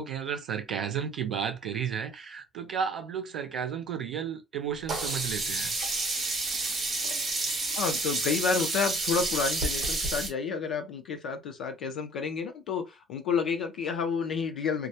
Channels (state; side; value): normal; both; correlation 0.50